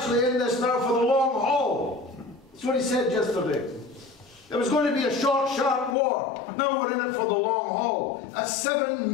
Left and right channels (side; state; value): right; drops out; at 6.0 s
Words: in this now for the long haul. That's what he said yesterday. It was going to be a short, sharp war. Now we're in it for the long haul. That's £7